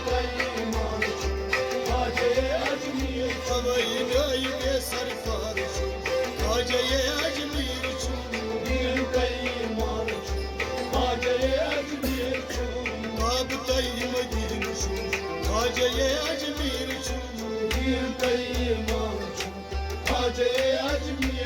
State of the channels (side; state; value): both; identical; correlation 1.00